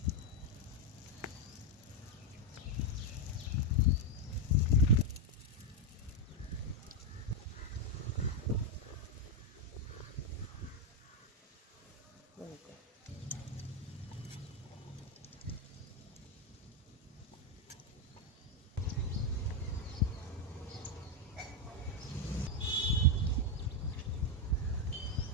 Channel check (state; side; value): normal; both; correlation 0.03